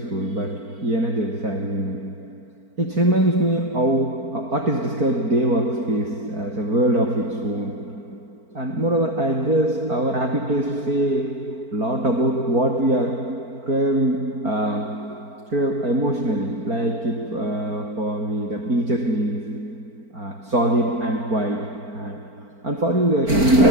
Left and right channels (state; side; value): late; left; 4.4 ms